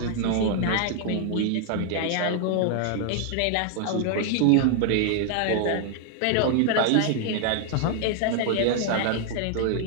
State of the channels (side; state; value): both; different; correlation 0.00